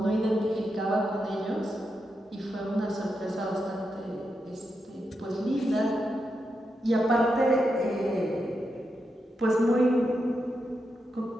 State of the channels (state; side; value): normal; both; correlation 0.86